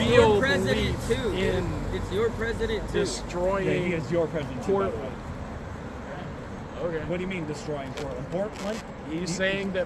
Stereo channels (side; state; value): both; identical; correlation 1.00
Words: your president belief too. dude. in It's your president too. Yeah, destroying he is your president. too, by the way. Portland. Okay. What do you mean destroying Portland? Portland? He's saying